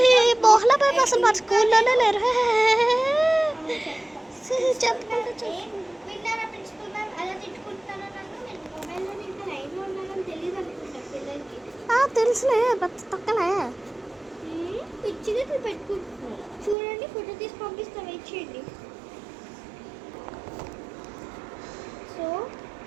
మోహన మ్యామ్ అసలు మన స్కూల్లోనే లేరు. చెప్పుకుంటూ విన్నారా ప్రిన్సిపల్ మ్యామ్ అలా తిట్టుకుంటున్నాను నన్ను. నేను మొబైల్లో ఇంకా లైన్లో ఉన్నానని తెలియదు అనుకుంటా పిల్లలకి. తెలుసులే తక్కలే పిచ్చిగా పెట్టుకుంటున్నాను. చూడండి ఫోటో తీసి పంపిస్తా, వెయిట్ చేయండి. సో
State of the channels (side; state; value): left; drops out; at 16.8 s